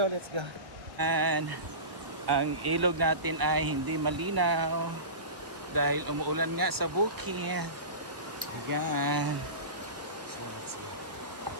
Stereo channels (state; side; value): late; left; 1.3 ms